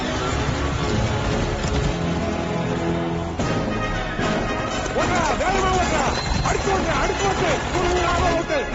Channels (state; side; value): identical; both; correlation 1.00